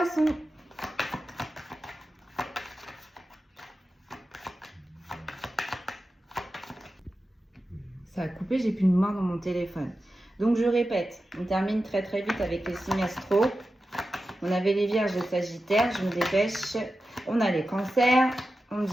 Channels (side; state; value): both; normal; correlation 0.92